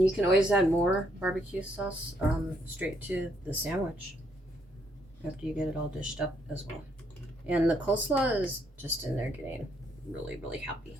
you can always add more barbecue sauce straight to the sandwich after you get it all dished up as well. And the coleslaw is just in there getting really, really happy.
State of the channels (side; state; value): both; normal; correlation 0.72